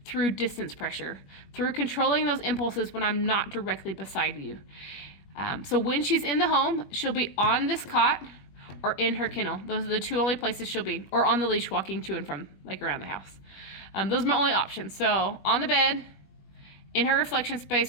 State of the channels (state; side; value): late; right; 21 ms